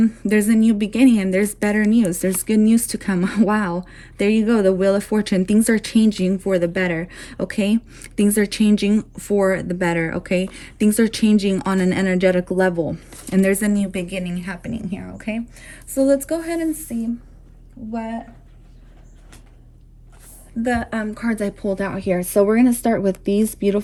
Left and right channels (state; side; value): identical; both; correlation 1.00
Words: there's a new beginning, and there's better news, there's good news to come. Wow, there you go, the Wheel of Fortune. Things are changing for the better, okay? Things are changing for the better, okay? Things are changing on an energetic level, and there's a new beginning happening here, okay? So let's go ahead and see what the cards I pulled out here. So we're going to start with these